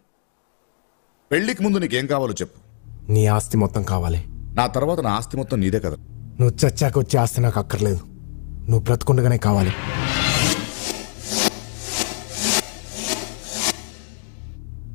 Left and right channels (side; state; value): right; silent; digital silence